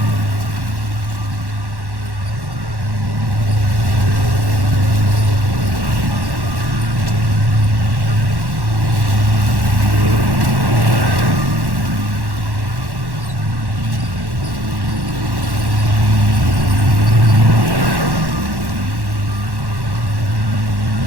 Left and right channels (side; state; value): left; late; 1.1 ms